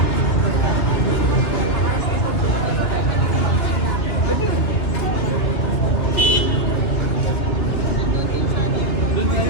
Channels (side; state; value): right; late; 2.6 ms